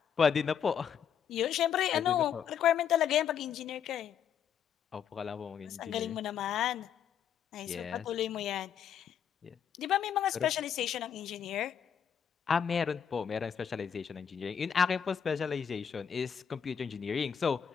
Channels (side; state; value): right; quieter; 8.1 dB